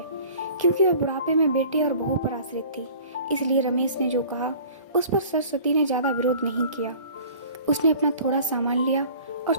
क्योंकि वह बुढ़ापे में बेटे और बहू पर आश्रित थी। इसलिए रमेश ने जो कहा उस पर सरस्वती ने ज्यादा विरोध नहीं किया। उसने अपना थोड़ा सामान लिया और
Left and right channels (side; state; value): both; inverted; correlation -0.46